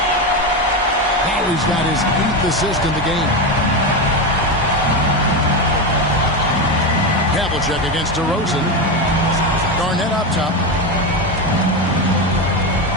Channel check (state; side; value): normal; both; correlation 0.14